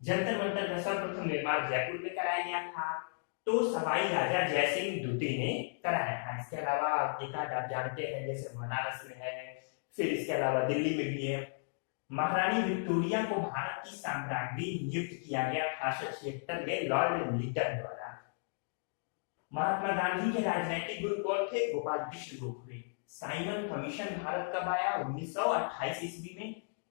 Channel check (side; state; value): right; silent; digital silence